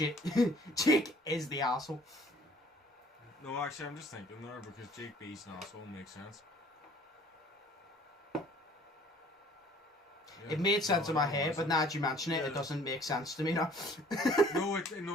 is the asshole. No, actually, I'm just thinking there because Jake B's an asshole makes sense. Yeah. It made sense in my head, but now that you mention it, it doesn't make sense to me now. See,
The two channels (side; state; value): both; normal; correlation 0.55